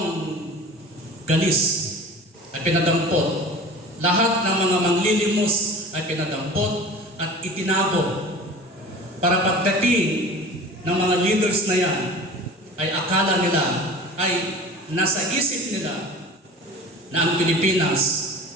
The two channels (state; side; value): normal; both; correlation 0.39